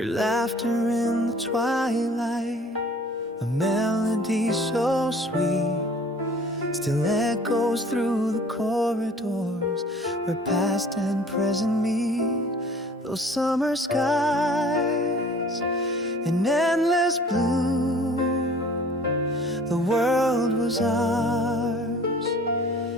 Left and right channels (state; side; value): normal; both; correlation 0.50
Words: laughter in the twilight, a melody so sweet, still echoes through the corridors where past and present meet. Those summer skies in endless blue, the world was ours